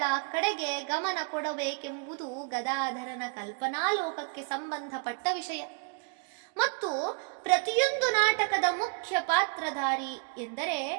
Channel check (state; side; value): quieter; left; 35.0 dB